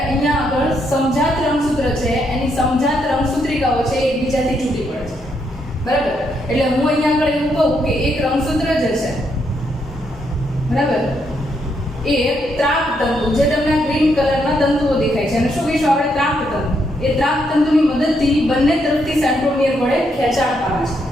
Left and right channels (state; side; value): normal; both; correlation 0.77